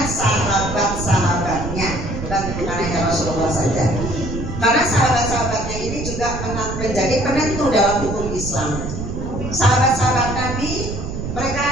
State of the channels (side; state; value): right; noise; rumble, 6 dB below the sound